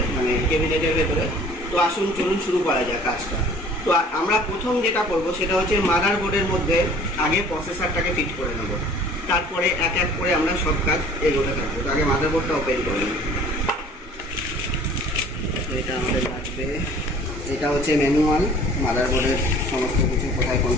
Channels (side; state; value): both; normal; correlation 0.50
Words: মানে ক্যাবিনেটের ভেতরে। তো আসুন চলুন শুরু করা যায় কাজটা। তো আমরা প্রথম যেটা করব সেটা হচ্ছে মাদারবোর্ডের মধ্যে আগে প্রসেসরটাকে ফিট করে নেব, তারপরে এক এক করে আমরা সব কাজ এগোতে থাকবো। তো আগে মাদারবোর্ডটা ওপেন করে নেব। এটা আমাদের লাগবে, এটা হচ্ছে ম্যানুয়াল মাদারবোর্ডের সমস্ত কিছু, কোথায়